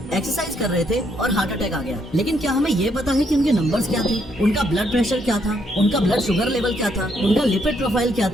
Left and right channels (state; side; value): normal; both; correlation 0.73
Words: एक्सरसाइज कर रहे थे और हार्ट अटैक आ गया। लेकिन क्या हमें ये पता है कि उनके नंबर्स क्या थे, उनका ब्लड प्रेशर क्या था, उनका ब्लड शुगर लेवल क्या था, उनका लिपिड प्रोफाइल क्या